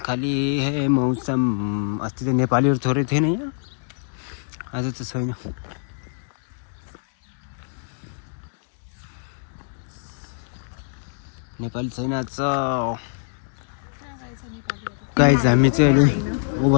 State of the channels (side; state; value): right; silent; digital silence